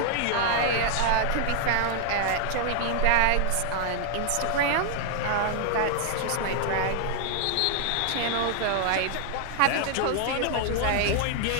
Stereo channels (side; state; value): both; different; correlation 0.00